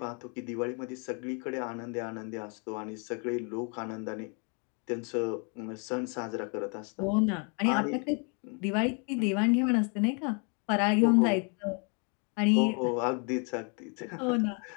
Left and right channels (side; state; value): right; quieter; 37.2 dB